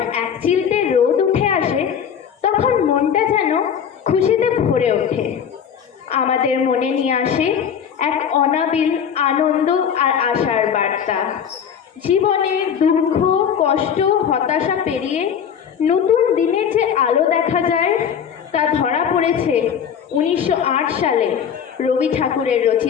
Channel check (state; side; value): quieter; right; 7.9 dB